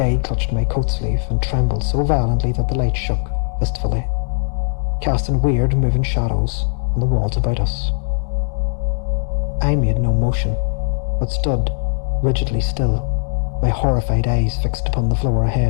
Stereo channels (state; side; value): silent; right; 67 dB below the other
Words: clutched my coat sleeve and trembled so violently that the light shook fistfully, casting weird moving shadows on the walls about us. I made no motion, but stood rigidly still, my horrified eyes fixed upon the floor